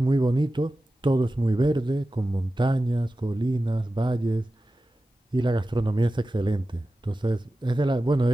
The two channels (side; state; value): both; normal; correlation 0.94